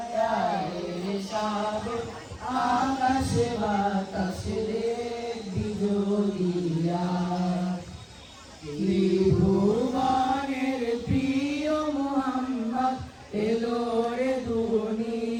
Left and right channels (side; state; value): both; identical; correlation 1.00